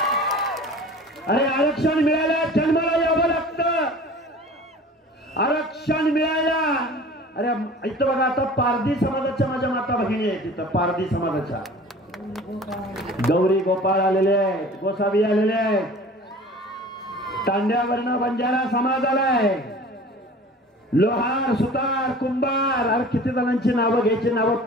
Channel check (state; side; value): normal; both; correlation 0.43